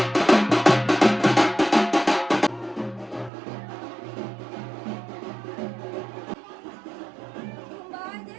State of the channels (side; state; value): left; drops out; at 3.3 s